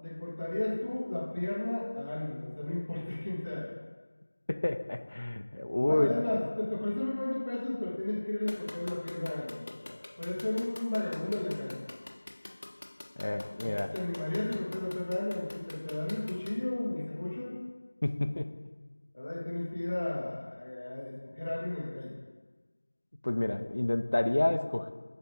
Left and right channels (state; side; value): inverted; both; correlation -1.00